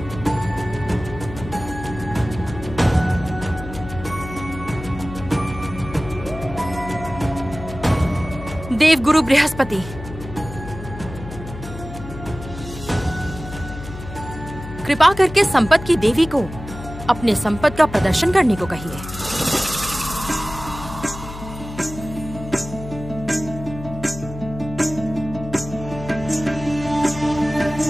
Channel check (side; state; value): left; noise; hum, 11 dB below the sound